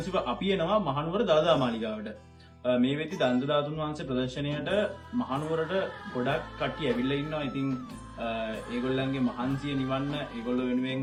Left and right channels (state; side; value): identical; both; correlation 1.00